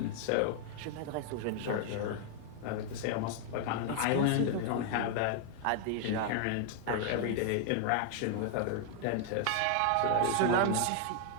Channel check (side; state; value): both; different; correlation 0.00